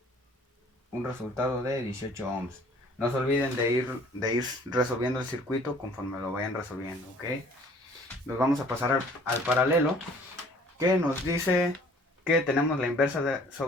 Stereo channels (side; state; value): both; normal; correlation 0.54